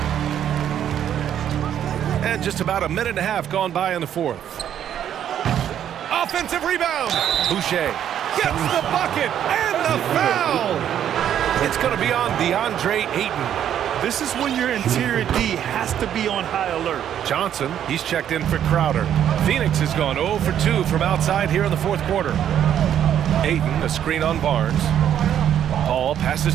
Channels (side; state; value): left; quieter; 10.0 dB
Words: And just about a minute and a half gone by in the fourth. Offensive rebound. Boucher gets the bucket and the foul. It's going to be on DeAndre Ayton. This is when your interior D has to be on high alert. Johnson, he's checked in for Crowder. Phoenix has gone 0 for 2 from outside here in the fourth quarter. Ayton, a screen on Barnes. Paul passes